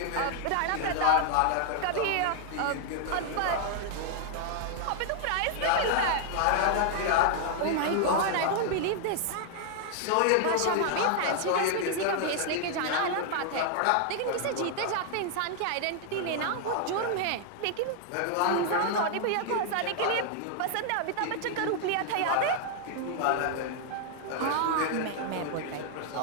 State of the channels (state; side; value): different; both; correlation 0.00